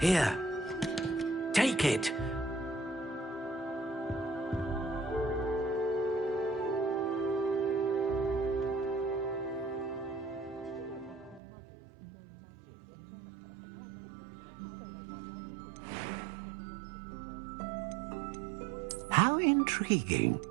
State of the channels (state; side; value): drops out; left; at 11.4 s